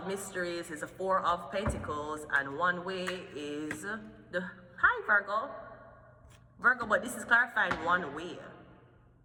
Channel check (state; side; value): identical; both; correlation 1.00